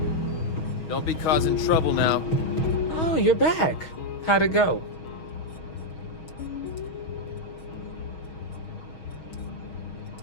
Don't be causing trouble now. Oh, you're back. How'd it go?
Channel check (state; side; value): late; right; 6.3 ms